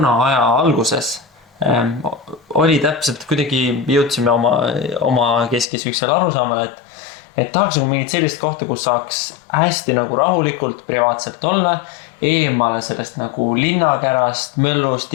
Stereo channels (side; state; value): right; drops out; at 5.7 s